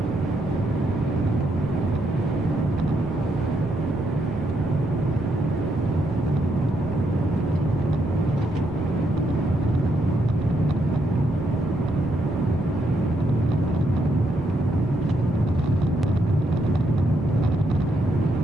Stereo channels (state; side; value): noise; right; rumble, 14 dB below the sound